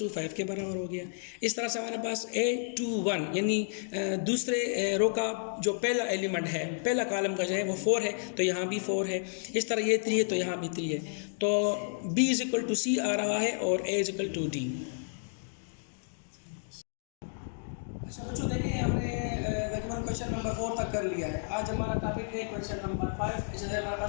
5 के बराबर हो गया। इस तरह से हमारे पास A21 यानी दूसरे रो का जो पहला एलिमेंट है, पहला कॉलम का जो है वो 4 है तो यहाँ भी 4 है। इस तरह ये 3 है तो यहाँ भी 3 है। तो B = C आ रहा है और A = D। अच्छा बच्चों, देखिए हमने तकरीबन क्वेश्चन नंबर 4 तक कर लिया है। आज हमारा टॉपिक है क्वेश्चन नंबर 5, जैसे हमारे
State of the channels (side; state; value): right; silent; digital silence